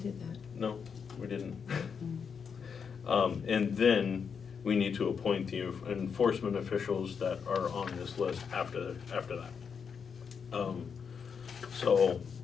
that. No, we didn't. And then we need to appoint the enforcement officials that are on this list after that. So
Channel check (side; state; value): right; quieter; 6.4 dB